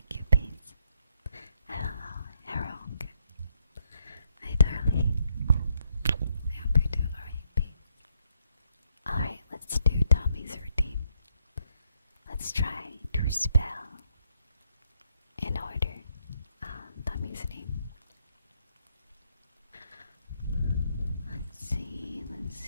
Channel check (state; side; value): inverted; both; correlation -0.75